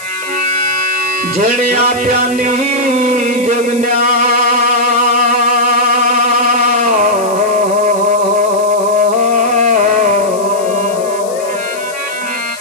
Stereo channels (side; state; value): left; noise; hiss, 16 dB below the sound